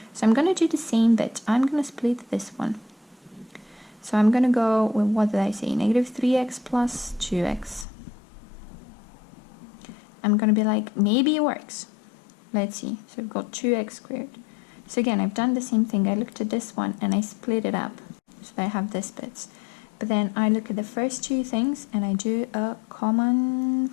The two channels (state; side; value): drops out; right; at 7.9 s